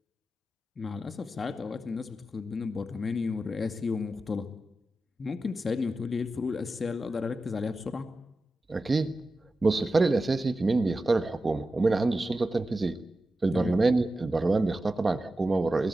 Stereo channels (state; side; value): normal; both; correlation 0.92